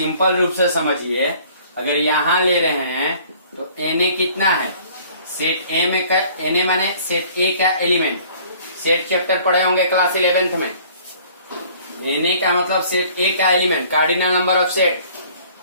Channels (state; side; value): inverted; both; correlation -0.54